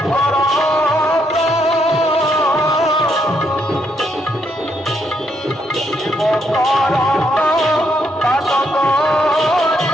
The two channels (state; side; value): normal; both; correlation 0.75